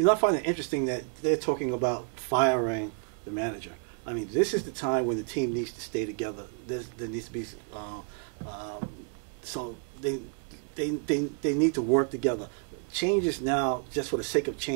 know, I find it interesting that they're talking about firing the manager. I mean, this is the time when the team needs to stay together. There needs to be so they need to work together. Changes now, just for the sake of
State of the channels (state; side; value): quieter; left; 37.9 dB